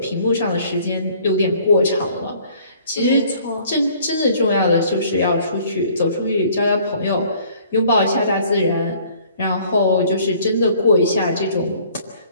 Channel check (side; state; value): both; inverted; correlation -0.57